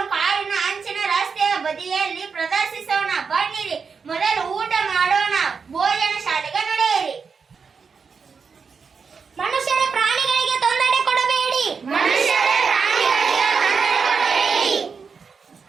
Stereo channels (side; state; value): left; quieter; 5.6 dB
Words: ಕಾರಿನ ಅಂಚಿನ ರಸ್ತೆಯ ಬದಿಯಲ್ಲಿ ಪ್ರದರ್ಶಿಸೋಣ. ಬನ್ನಿರಿ, ಮೊದಲು ಊಟ ಮಾಡೋಣ.